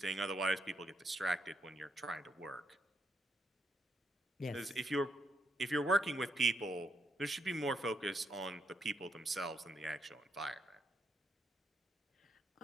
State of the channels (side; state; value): both; normal; correlation 0.78